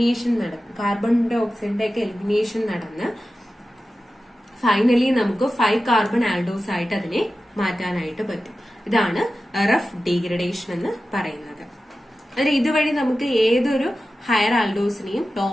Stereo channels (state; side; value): normal; both; correlation 0.94